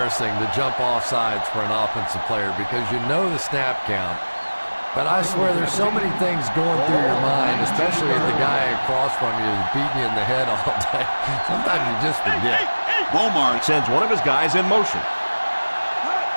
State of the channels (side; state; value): both; inverted; correlation -1.00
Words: to jump off sides for an offensive player because you know the snap count. But I swear there's so many things going through your mind, especially if the guy across from you is beating you in the head all day. Sometimes you just forget. Beaumont sends one of his guys in motion.